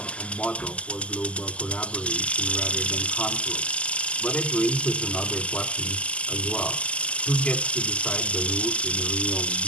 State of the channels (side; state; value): right; late; 0.058 ms